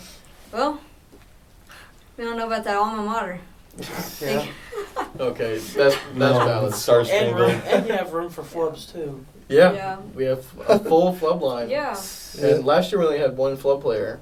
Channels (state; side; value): identical; both; correlation 1.00